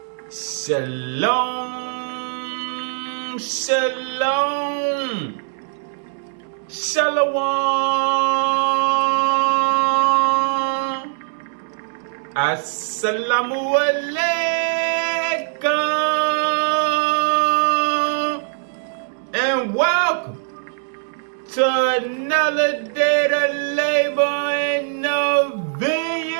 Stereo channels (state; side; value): silent; left; 65 dB below the other